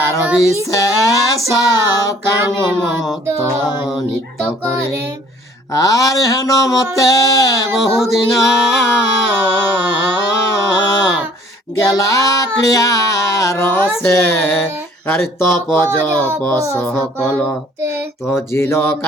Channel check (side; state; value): both; normal; correlation 0.56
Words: বিশেষ কাম মত নিত্য করে। আর হেন মতে বহুদিন গেলা ক্রিয়ার সে আর তপ জপ সকল তজিল